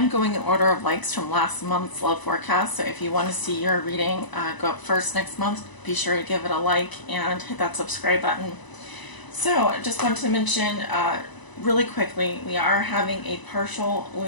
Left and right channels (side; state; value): right; late; 1.0 ms